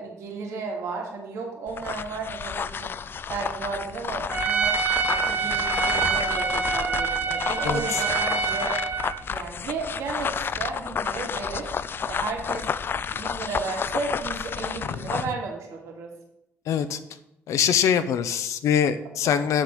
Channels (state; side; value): normal; both; correlation 0.35